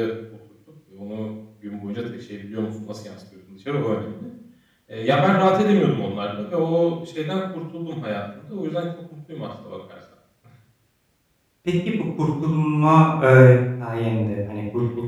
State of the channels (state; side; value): identical; both; correlation 1.00